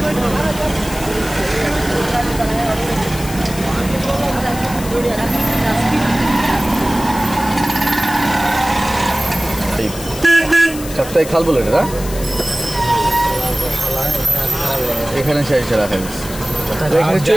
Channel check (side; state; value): left; noise; hiss, 12 dB below the sound